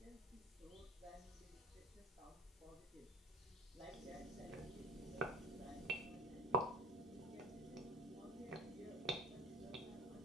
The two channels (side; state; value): both; normal; correlation 0.42